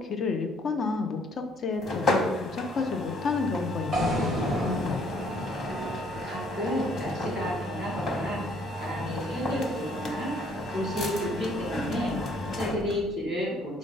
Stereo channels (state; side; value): normal; both; correlation 0.63